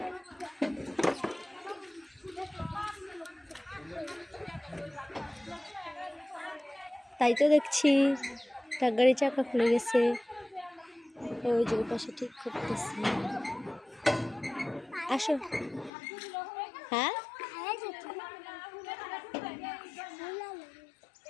তাই তো দেখছি ট্রাক গাড়ির চাকা খুলে গেছে। ওই যে পাশে ঠিক করতেছে। আসো। হ্যাঁ,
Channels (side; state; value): right; drops out; at 15.9 s